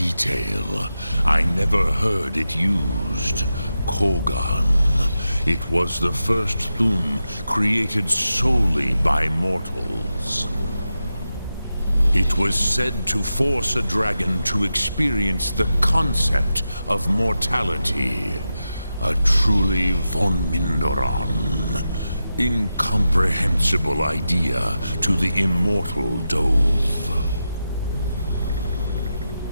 I never heard it used. Kogan. It was the first Thum created solely by mortals. It was said to force a dragon to experience the concept of mortality. A truly von Mindoran. Incomprehensible idea to the immortal Dove.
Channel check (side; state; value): both; inverted; correlation -0.90